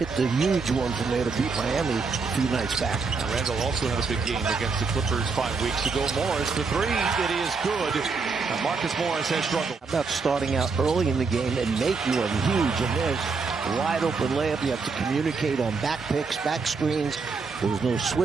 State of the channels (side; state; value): left; quieter; 4.6 dB